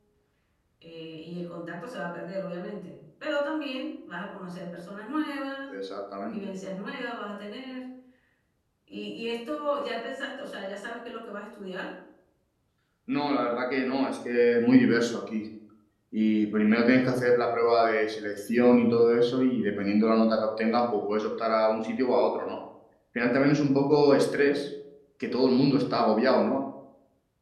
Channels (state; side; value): identical; both; correlation 1.00